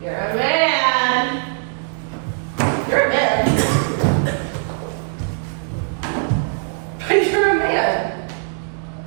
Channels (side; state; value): left; silent; digital silence